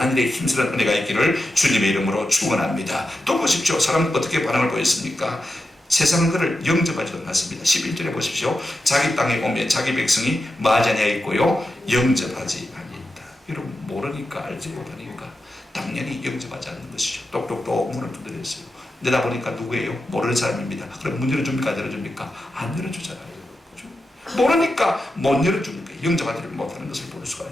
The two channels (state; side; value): normal; both; correlation 0.90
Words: 일에 힘쓰는 은혜가 있기를 주님의 이름으로 축원합니다. 또 보십시오. 사람은 어떻게 반응을 보였습니까? 세상은 그를 영접하지도 않았습니다. 11절에 보십시오. 자기 땅에 오면 자기 백성이 마자냐에 있고요 영접하지 아니했다. 여러분, 모르니까 알지 못하니까 당연히 영접하지 않는 것이죠. 똑똑똑 문을 두드렸어요. 내다보니까 누구예요? 모르는 사람입니다. 그럼 문 열어줍니까? 안 열어줍니까? 안 열어주잖아요. 그렇죠? 모르니까 못 열어줍니까? 영접하지를 못하는 것을 볼 수가